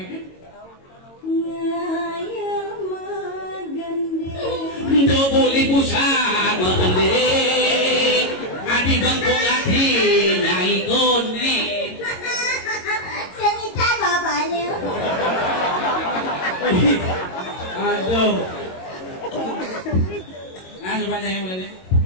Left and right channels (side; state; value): right; late; 22 ms